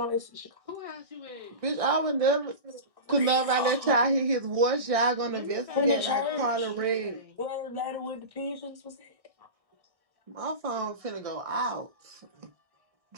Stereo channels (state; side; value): late; left; 1.6 ms